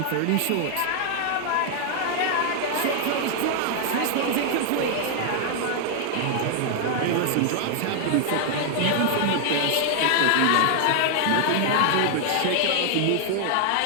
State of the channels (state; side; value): different; both; correlation 0.00